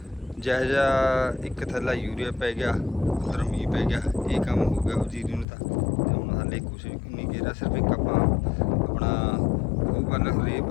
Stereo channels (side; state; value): right; drops out; at 5.5 s